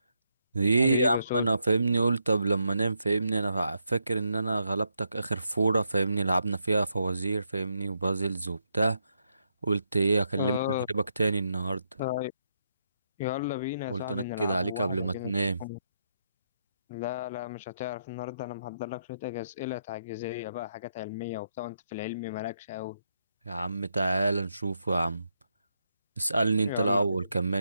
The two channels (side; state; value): both; inverted; correlation -0.80